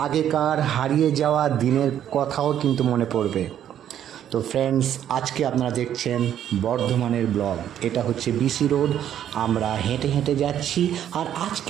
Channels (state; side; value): quieter; left; 10.4 dB